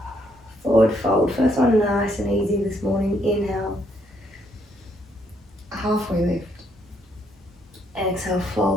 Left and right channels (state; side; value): normal; both; correlation 0.72